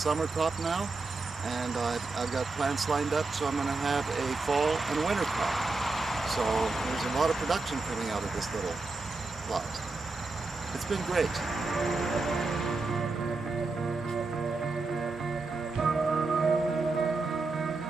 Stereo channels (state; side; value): quieter; left; 3.7 dB